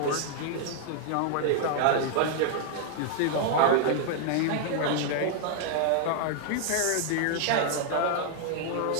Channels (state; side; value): different; both; correlation 0.00